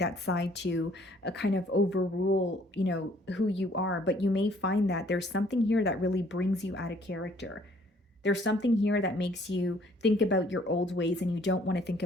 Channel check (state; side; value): normal; both; correlation 0.60